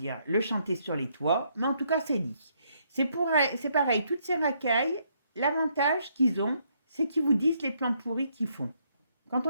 le chanter sur les toits. Mais en tout cas, c'est dit. C'est pareil, toutes ces racailles, l'avantage qu'ils ont, c'est qu'ils vous disent les plans pourris qu'ils font. Quand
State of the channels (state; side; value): inverted; both; correlation -0.72